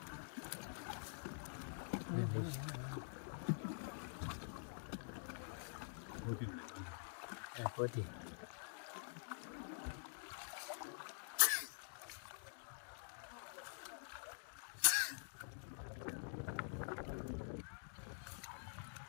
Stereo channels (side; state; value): right; silent; digital silence